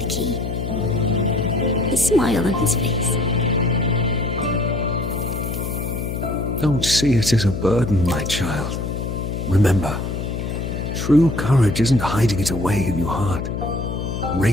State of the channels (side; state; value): left; noise; hum, 4 dB below the sound